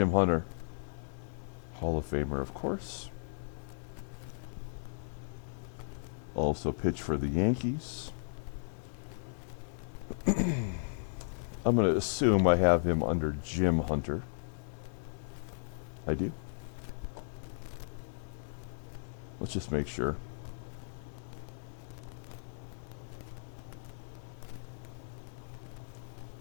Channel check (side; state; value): right; silent; digital silence